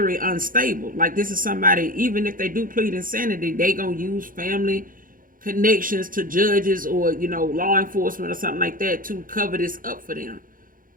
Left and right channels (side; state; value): left; late; 0.40 ms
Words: unstable. Like, this is somebody, even if they do plead insanity, they gonna use family connections to judges or, law enforcement or something like that to cover this up for them.